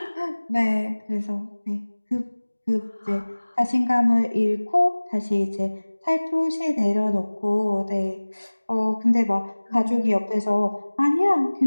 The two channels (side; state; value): both; inverted; correlation -1.00